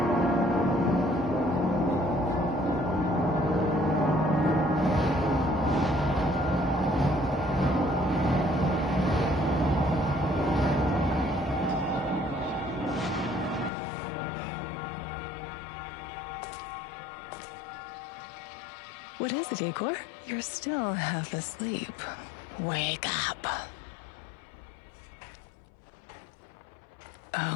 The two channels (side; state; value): right; drops out; at 13.7 s